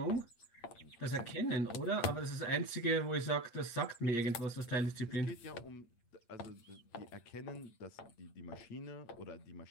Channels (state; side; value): late; right; 8.6 ms